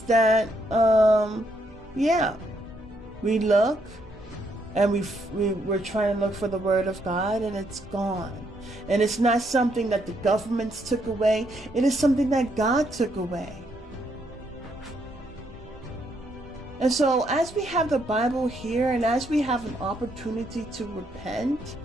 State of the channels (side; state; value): both; normal; correlation 0.74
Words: that we look and we're trying to look for the word of God, and it's gone. And it's not something that the governments took away. It is something that God took away. And so as we have the Bible here, and as we have an opportunity to repent,